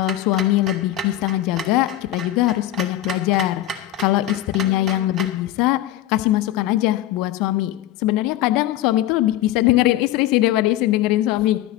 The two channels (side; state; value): right; quieter; 13.6 dB